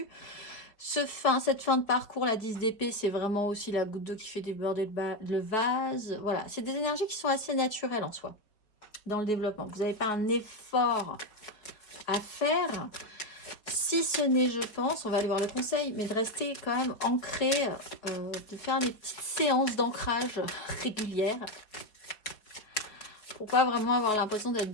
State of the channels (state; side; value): late; right; 4.7 ms